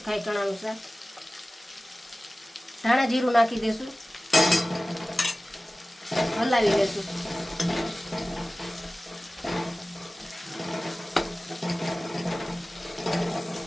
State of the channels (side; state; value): both; normal; correlation 0.97